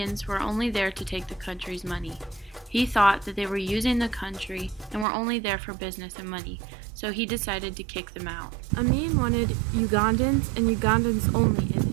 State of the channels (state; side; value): drops out; left; at 5.1 s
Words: were only there to take the country's money. He thought that they were using the country and were only there for business and money, so he decided to kick them out. Amin wanted Ugandans and Ugandans only in